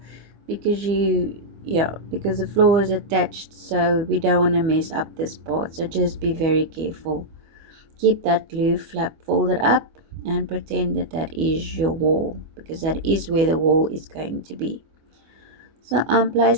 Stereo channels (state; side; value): late; left; 24 ms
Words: because because the floor is attached, so we don't want to mess up this part. So just be very careful. Keep that glue flap folded up and pretend that that is your wall, because that is where the wall is going to be. So I'm